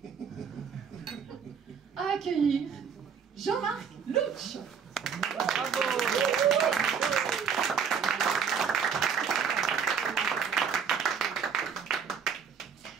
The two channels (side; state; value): left; quieter; 6.7 dB